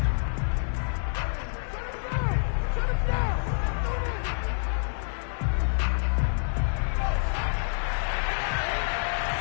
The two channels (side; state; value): right; silent; digital silence